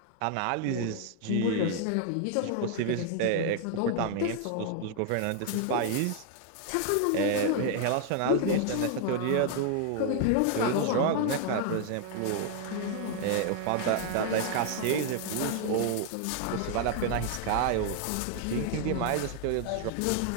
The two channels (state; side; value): different; both; correlation 0.00